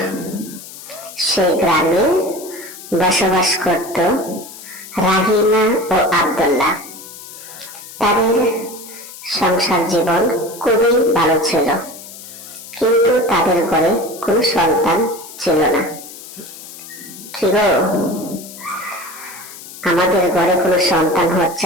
সেই গ্রামে বসবাস করত রাহিমা ও আব্দুল্লাহ। তাদের সংসার জীবন খুবই ভালো ছিল, কিন্তু তাদের ঘরে কোনো সন্তান ছিল না। কি গো, আমাদের ঘরে কোনো সন্তান হচ্ছে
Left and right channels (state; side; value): noise; left; hiss, 15 dB below the sound